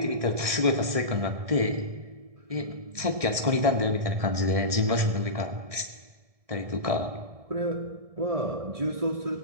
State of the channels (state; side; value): late; left; 1.7 ms